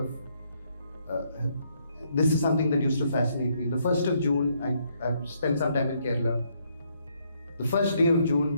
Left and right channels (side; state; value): both; inverted; correlation -0.72